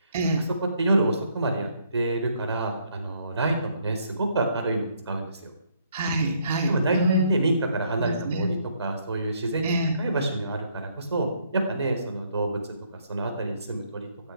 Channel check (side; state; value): both; inverted; correlation -0.69